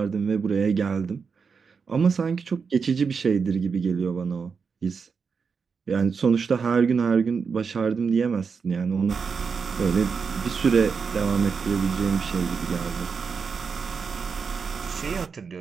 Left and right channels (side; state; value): left; quieter; 5.6 dB